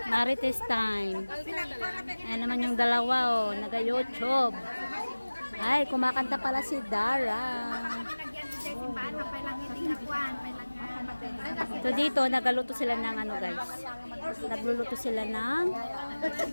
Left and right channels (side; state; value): both; inverted; correlation -1.00